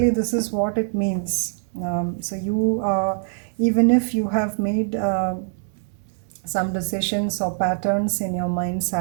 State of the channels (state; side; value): silent; left; 59 dB below the other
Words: this is what it means. Even if you have made some decisions or patterns in your mind's